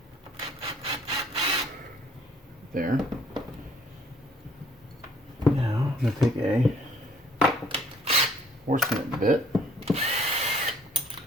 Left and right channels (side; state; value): both; normal; correlation 0.59